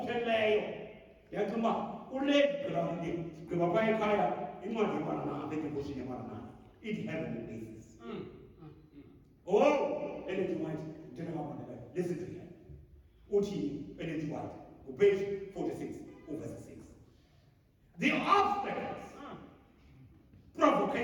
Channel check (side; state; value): both; identical; correlation 1.00